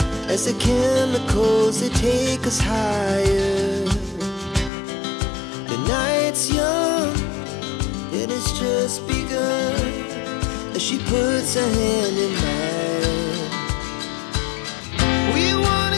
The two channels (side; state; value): right; drops out; at 4.7 s